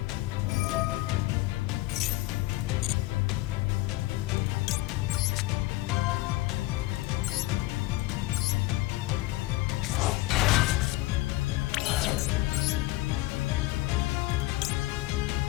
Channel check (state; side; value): quieter; right; 19.2 dB